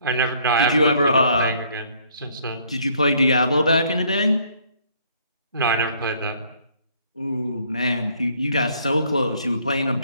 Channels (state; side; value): inverted; both; correlation -0.63